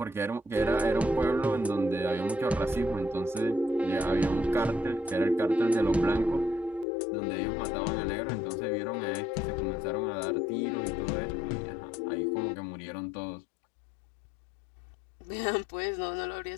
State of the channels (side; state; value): right; drops out; at 6.9 s